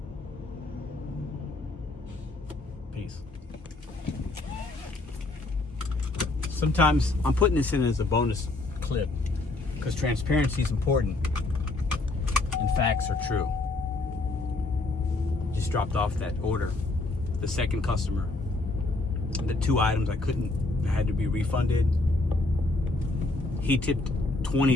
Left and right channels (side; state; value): right; quieter; 3.1 dB